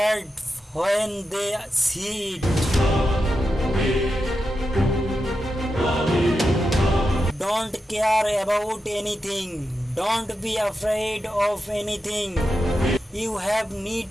when they see it. Don't care about anything. Don't be afraid of anything. You have need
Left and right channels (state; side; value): normal; both; correlation 0.89